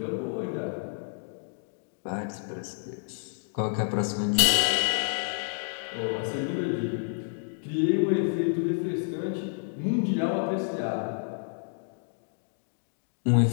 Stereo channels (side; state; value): right; silent; digital silence